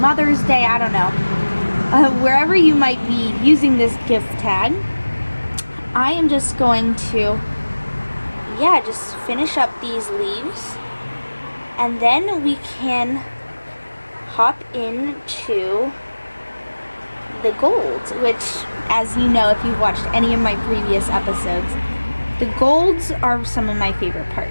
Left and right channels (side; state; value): both; inverted; correlation -1.00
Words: Day, I don't know. Wherever you might be using this gift tag, I am just going to, yeah, just finish up these leaves, and then we can hop into the golds, which, as you know if you've watched any of my previous episodes, the golds are some of my favorite